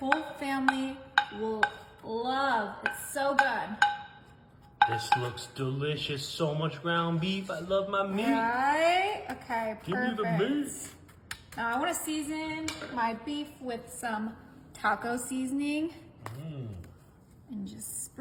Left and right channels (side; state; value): both; identical; correlation 1.00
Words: family will love. It's so good. This looks delicious. So much ground beef. I love my meat. Right? Okay, perfect. Give me the meat. Now I want to season my beef with some taco seasoning. And just